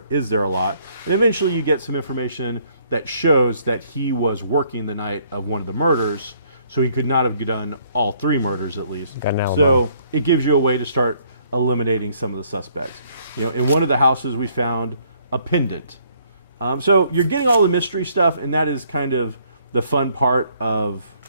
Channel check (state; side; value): inverted; both; correlation -0.65